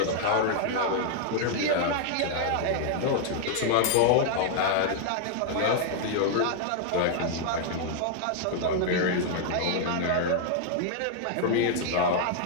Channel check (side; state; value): both; different; correlation 0.00